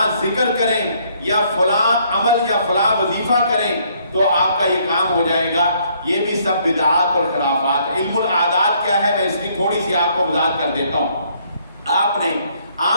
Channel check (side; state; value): both; inverted; correlation -0.67